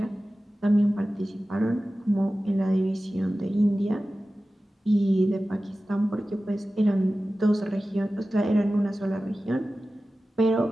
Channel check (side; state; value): both; normal; correlation 0.95